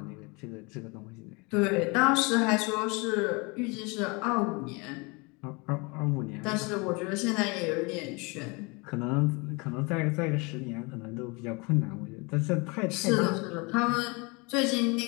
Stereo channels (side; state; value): right; quieter; 28.4 dB